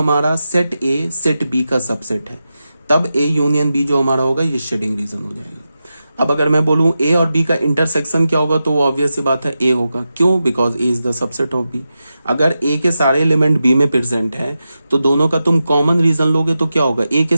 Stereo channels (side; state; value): both; inverted; correlation -0.91